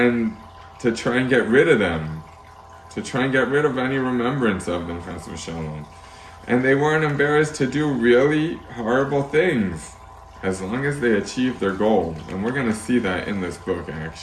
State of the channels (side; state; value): both; identical; correlation 1.00